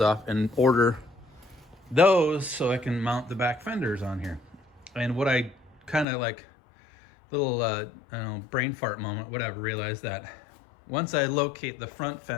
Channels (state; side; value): drops out; right; at 6.1 s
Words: and order those so I can mount the back fenders on here. And what I kind of like, little I don't know, brain fart moment, whatever, realized that once I locate the front